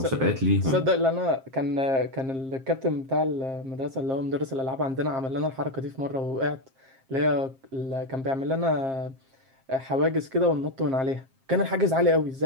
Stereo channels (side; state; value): left; late; 7.5 ms